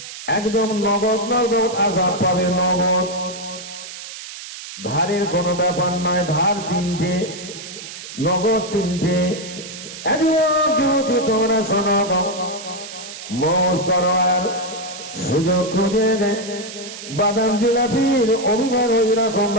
একদম নগদ নগদ আযাব পাবে। নগদ, ধারের কোনো ব্যাপার নয়। ধার 3টে, নগদ 3টে। যদি তোমরা শোনো, মৌজ করো আর সুযোগ খুঁজে দেয়, বাদাম জিলাপির অভিমান ওই রকম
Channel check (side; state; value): right; noise; hiss, 12 dB below the sound